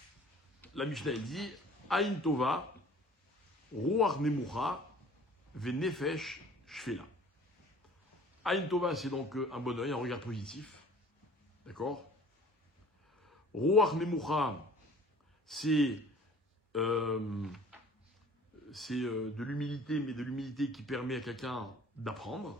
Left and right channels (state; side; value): normal; both; correlation 0.49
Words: La Mishnah, elle dit Aïn Tova, Ruach Nemucha, Venefesh Shfela. Aïn Tova, c'est donc un bon œil, un regard positif. D'accord? Ruach Nemucha, c'est de l'humilité, mais de l'humilité qui permet à quelqu'un d'apprendre,